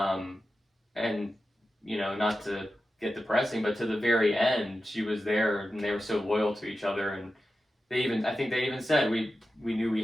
And, not to get depressing, but to the very end, she was there, and they were so loyal to each other. And I think they even said, we knew we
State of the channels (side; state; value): both; normal; correlation 0.92